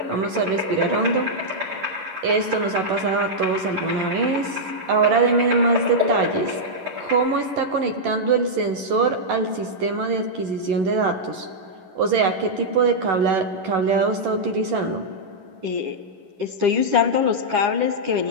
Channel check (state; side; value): late; left; 11 ms